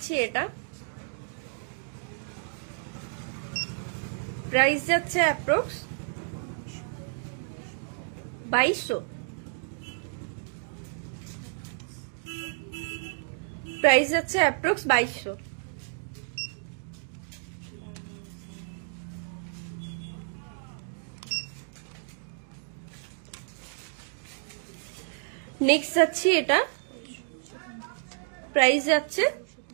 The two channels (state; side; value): silent; left; digital silence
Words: এটা, প্রাইস যাচ্ছে অ্যাপ্রক্স 2200। প্রাইস যাচ্ছে অ্যাপ্রক্স 2200। নেক্সট যাচ্ছে এটা, প্রাইস যাচ্ছে